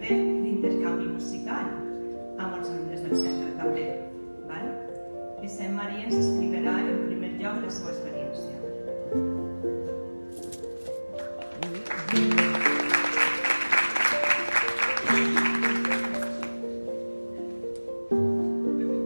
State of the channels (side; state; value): both; inverted; correlation -1.00